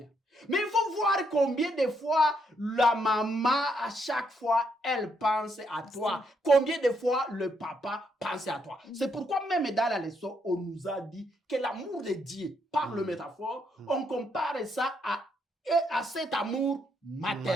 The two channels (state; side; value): normal; both; correlation 0.75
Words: Mais il faut voir combien de fois la maman, à chaque fois, elle pense à toi. Combien de fois le papa pense à toi. C'est pourquoi même dans la leçon, on nous a dit que l'amour de Dieu, par le métaphore, on compare ça à cet amour